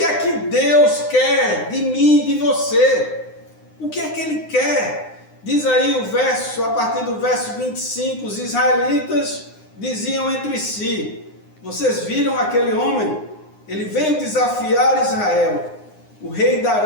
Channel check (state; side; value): late; right; 9.7 ms